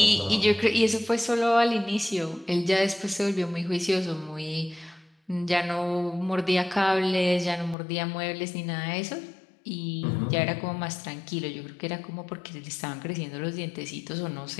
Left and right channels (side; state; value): right; drops out; at 7.8 s